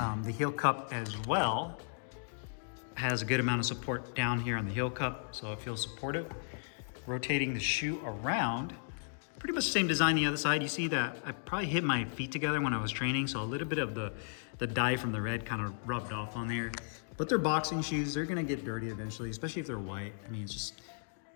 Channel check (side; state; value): right; silent; digital silence